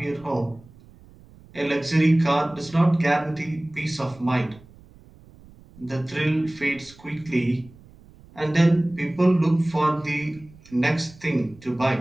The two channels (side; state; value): right; noise; rumble, 24 dB below the sound